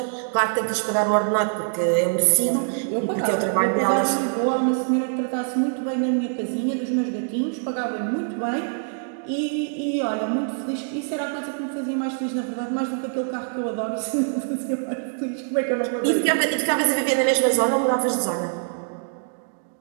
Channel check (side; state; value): left; silent; digital silence